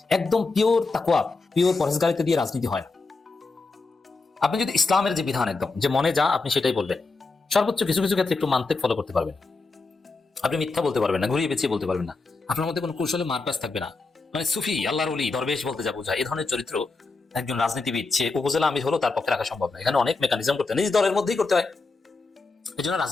একদম পিওর তাকওয়া, পিওর পরেজগারিতে দিয়ে রাজনীতি হয় না। আপনি যদি ইসলামের যে বিধান একদম যে মনে যা আপনি সেটাই বলবেন, সর্বোচ্চ কিছু কিছু ক্ষেত্রে একটু মানতেক ফলো করতে পারবেন, আপনি মিথ্যা বলতে পারবেন না, ঘুরিয়ে পেঁচিয়ে বলতে পারবেন না, আপনার মধ্যে কোনো কৌশলে মারপ্যাচ থাকবে না। মানে সুফি, আল্লাহর ওলি, দরবেশ বলতে যা বোঝায়, এই ধরনের চরিত্র একজন রাজনীতিবিদ সে উপজেলা আমির হলো তার পক্ষে রাখা সম্ভব না। এখানে অনেক মেকানিজম করতে হয়, নিজ দলের মধ্যেই করতে হয়। এই জন্য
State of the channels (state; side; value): quieter; right; 3.9 dB